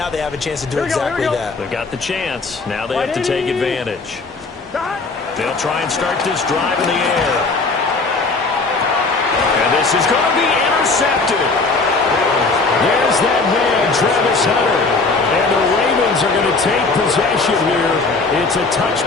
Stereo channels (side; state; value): right; quieter; 3.8 dB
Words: they have a chance to do exactly that. They've got the chance. Now they have to take advantage. They'll try and start this drive in the air. And this is going to be intercepted. There's that man, Travis Hunter. And the Ravens are going to take possession here. It's a